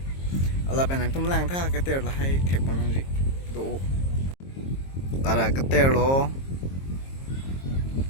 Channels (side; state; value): right; late; 22 ms